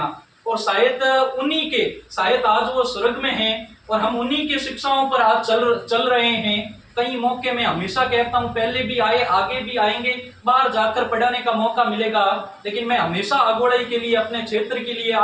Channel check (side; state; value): both; identical; correlation 1.00